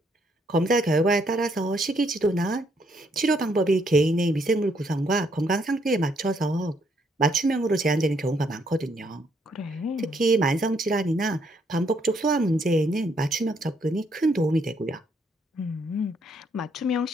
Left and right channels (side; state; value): both; normal; correlation 0.71